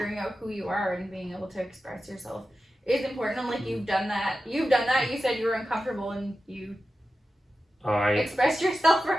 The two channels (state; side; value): normal; both; correlation 0.92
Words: out who you are and being able to express yourself is important. And like you've done that, you said you were uncomfortable and you expressed yourself